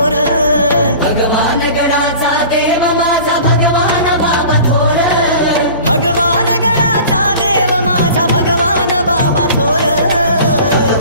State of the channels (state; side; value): inverted; both; correlation -0.42